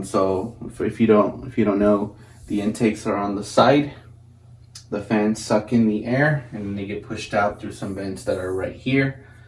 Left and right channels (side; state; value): both; identical; correlation 1.00